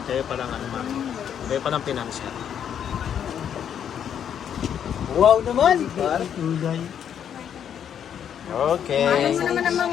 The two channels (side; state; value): right; quieter; 8.8 dB